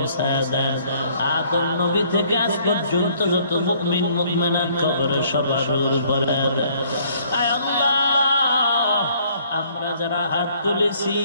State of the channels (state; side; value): inverted; both; correlation -0.62